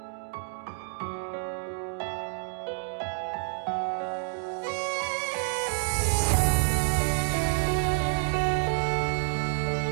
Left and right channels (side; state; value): left; silent; digital silence